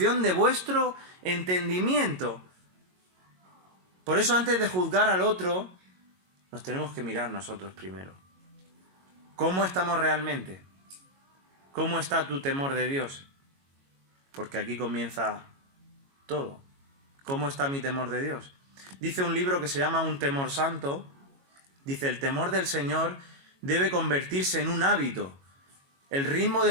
de vuestro entendimiento. Por eso antes de juzgar al otro, nos tenemos que mirar nosotros primero. ¿Cómo estamos realmente? ¿Cómo está tu temor de Dios? Porque aquí comienza todo. ¿Cómo está mi temor de Dios? Dice un libro que se llama Un temor santo. Dice, el temor del Señor debe convertirse en un hábito, el ritmo de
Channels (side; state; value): left; late; 22 ms